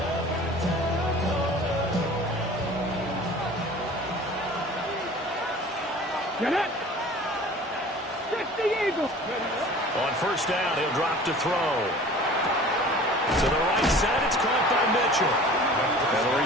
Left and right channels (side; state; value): both; normal; correlation 0.44